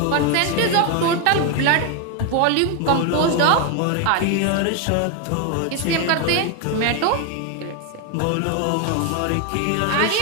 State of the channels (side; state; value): both; different; correlation 0.01